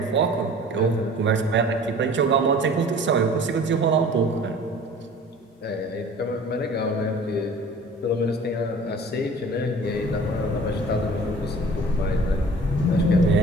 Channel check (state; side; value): normal; both; correlation 0.45